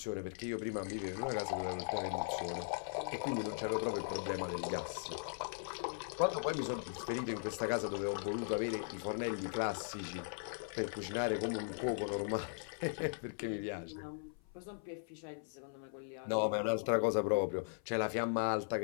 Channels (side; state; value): right; silent; 52 dB below the other